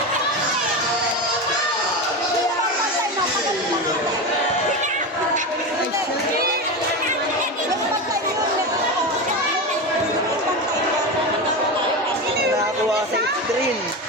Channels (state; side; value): normal; both; correlation 0.20